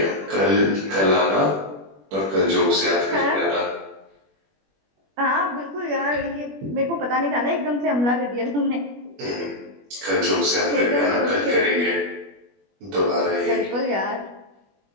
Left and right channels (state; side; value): late; left; 21 ms